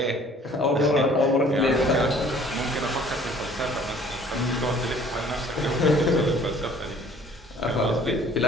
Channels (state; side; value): normal; both; correlation 0.54